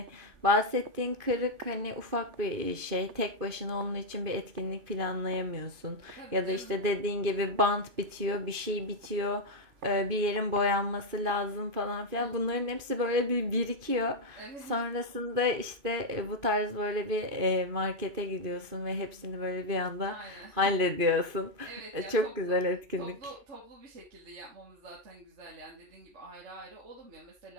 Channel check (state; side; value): late; left; 2.5 ms